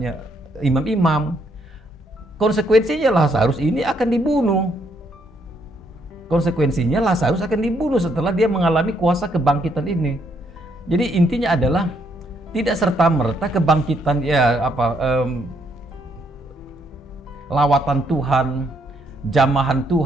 imam-imam. Konsekuensinya Lazarus ini akan dibunuh. Konsekuensinya Lazarus akan dibunuh setelah dia mengalami kuasa kebangkitan ini. Jadi intinya adalah tidak serta-merta kebangkitan lawatan Tuhan, jamahan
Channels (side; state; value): both; normal; correlation 0.73